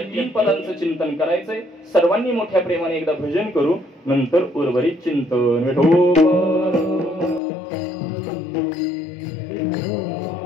3 पदांचं चिंतन करायचंय. सर्वांनी मोठ्या प्रेमाने एकदा भजन करू, नंतर उर्वरित चिंतन. विठोबा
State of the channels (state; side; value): drops out; right; at 7.4 s